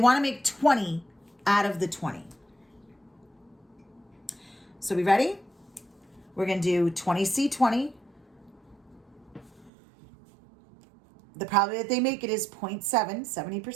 to make 20 out of the 20. So we ready? We're going to do 20C20. The probability that they make it is 0.7,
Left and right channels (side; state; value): left; drops out; at 9.7 s